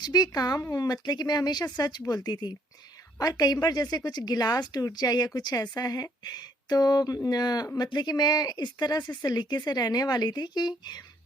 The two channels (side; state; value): both; normal; correlation 0.66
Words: भी काम हो, मतलब कि मैं हमेशा सच बोलती थी। और कई बार जैसे कुछ गिलास टूट जाए या कुछ ऐसा है तो मतलब कि मैं इस तरह से सलीके से रहने वाली थी कि